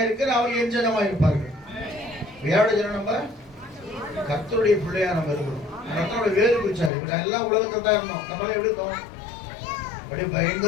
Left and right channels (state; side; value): drops out; right; at 6.9 s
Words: அவர்கள் என் ஜனமாயிருப்பார்கள். யாரோட ஜனம்? நம்ம கர்த்தருடைய பிள்ளையா நம்ம இருக்கிறோம். கர்த்தருடைய வேறு பிடிச்சாரு. இப்படி எல்லாம் உலகத்தை தான் இருந்தோம். நம்மளே எப்படி இருந்தோம்? அப்படியே